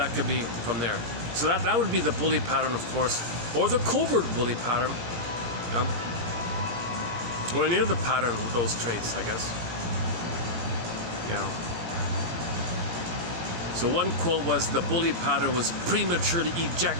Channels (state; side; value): late; left; 18 ms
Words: could be from there. So that would be the bully pattern, of course, or the covert bully pattern. Or any other pattern with those traits, I guess. So one quote was, the bully pattern was prematurely